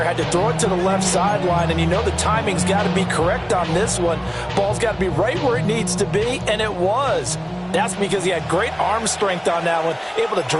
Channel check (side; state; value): both; identical; correlation 1.00